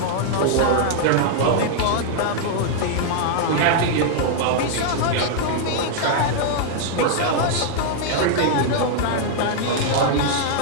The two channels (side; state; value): both; different; correlation -0.01